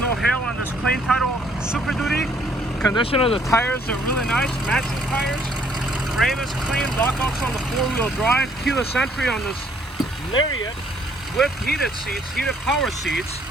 hail on this plain title Super Duty. Condition of the tires are really nice, matching tires. Frame is clean, lockouts on the 4-wheel drive. Keyless entry on this Lariat with heated seats, heated power seats.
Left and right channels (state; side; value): normal; both; correlation 0.65